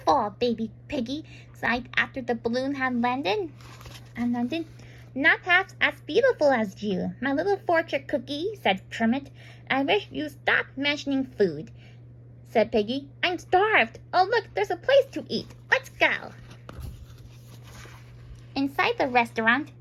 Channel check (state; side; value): identical; both; correlation 1.00